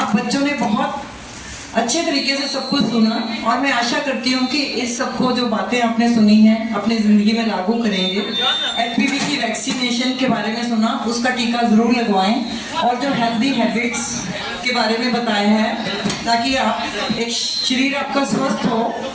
बच्चों ने बहुत अच्छे तरीके से सब कुछ सुना, और मैं आशा करती हूँ कि इस सबको जो बातें आपने सुनी हैं अपनी ज़िंदगी में लागू करेंगे। HPV की वैक्सीनेशन के बारे में सुना, उसका टीका ज़रूर लगवाएं, और जो हेल्दी हैबिट्स के बारे में बताया है, ताकि आप एक शरीर आपका स्वस्थ हो,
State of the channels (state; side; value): identical; both; correlation 1.00